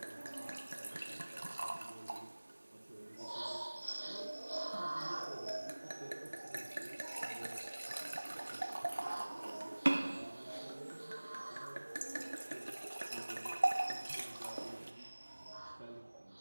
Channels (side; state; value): both; inverted; correlation -1.00